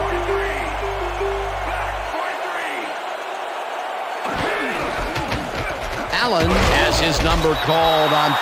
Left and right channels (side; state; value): both; identical; correlation 1.00